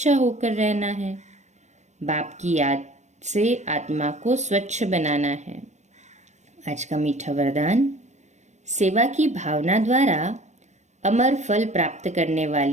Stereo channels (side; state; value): left; late; 0.34 ms